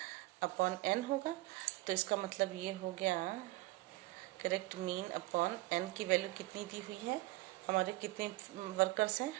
अपॉन n होगा, तो इसका मतलब ये हो गया करेक्ट मीन अपॉन एन की वैल्यू कितनी दी हुई है, हमारे कितने वर्कर्स हैं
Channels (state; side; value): quieter; left; 19.7 dB